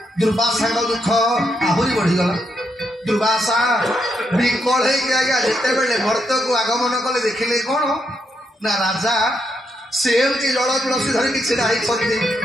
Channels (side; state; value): both; normal; correlation 0.79